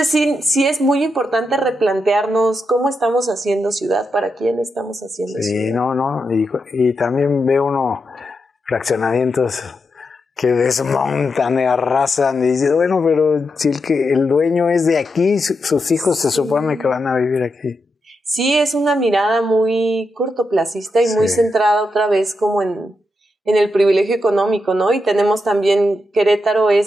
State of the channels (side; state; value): both; normal; correlation 0.85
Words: sí es muy importante replantearnos cómo estamos haciendo ciudad, para quién estamos haciendo ciudad. Sí, no. Y también ve uno fraccionamientos que desmontan y arrasan y dices, bueno, pero si el dueño es de aquí, sus hijos se supone que van a vivir aquí. Sí, es una mirada muy cortoplacista y muy centrada otra vez como en el privilegio económico, ¿no? Y tenemos también, Querétaro